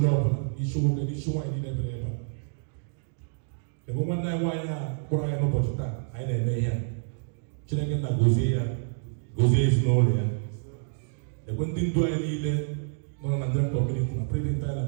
ọbụla, isi nwoke na isi nwaanyị niile bere ebe a. Ebe nwanne anyị nwaanyị a kpọrọ anyị n'ụbọchị taa anyị na-eme ihe a. Chineke nna gozie ya, gozie ezinụlọ ya. Ekwe ndị ndu anyị niile nọ na Nigerian community na president anyị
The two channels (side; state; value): left; silent; digital silence